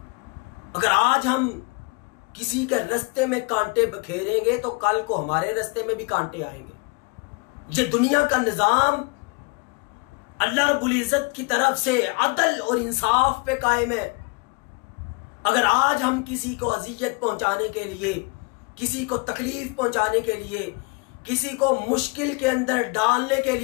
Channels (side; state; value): right; quieter; 29.5 dB